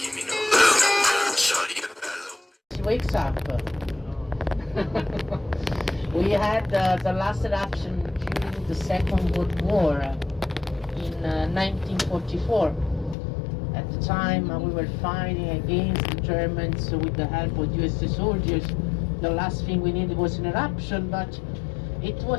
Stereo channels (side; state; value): right; drops out; at 13.2 s